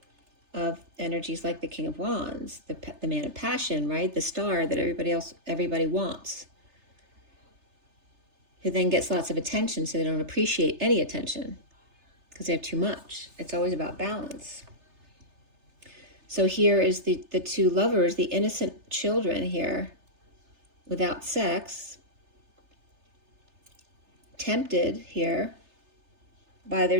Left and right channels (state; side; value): late; left; 3.3 ms